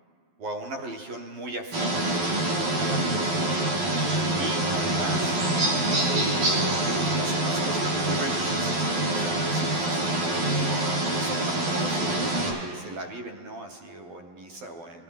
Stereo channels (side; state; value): left; late; 12 ms